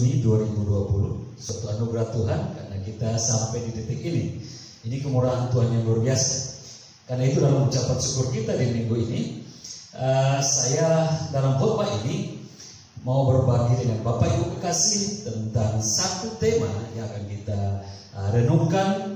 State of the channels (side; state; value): both; identical; correlation 1.00